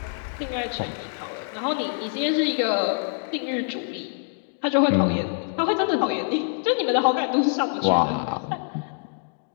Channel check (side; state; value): right; silent; digital silence